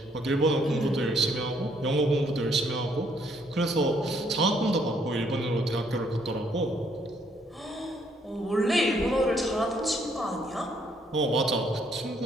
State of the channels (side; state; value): both; normal; correlation 0.69